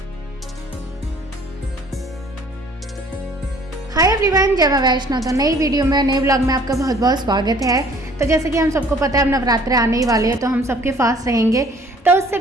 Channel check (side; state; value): both; normal; correlation 0.55